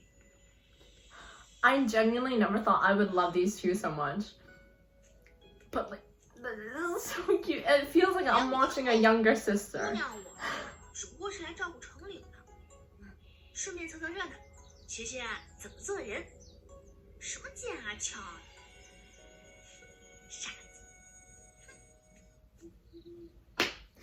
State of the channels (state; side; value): identical; both; correlation 1.00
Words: I genuinely never thought I would love these two so much. But like, this is so cute. It feels like I'm watching a younger 姑 sister. 娘我只不过是来照顾城里的，顺便凑凑热闹，学学怎么做人。什么剑啊鞘啊，傻子。